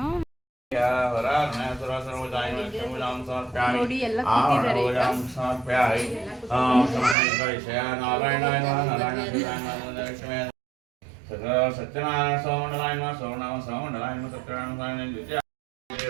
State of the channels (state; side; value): drops out; left; at 7.2 s